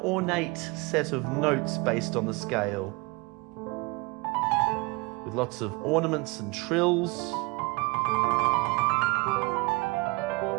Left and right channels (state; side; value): quieter; left; 25.6 dB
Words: set of notes based on the scale, with lots of ornaments and trills.